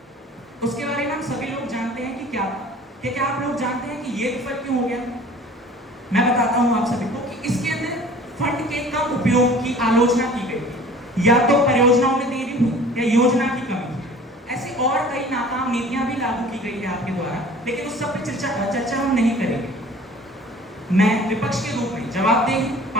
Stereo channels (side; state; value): both; normal; correlation 0.47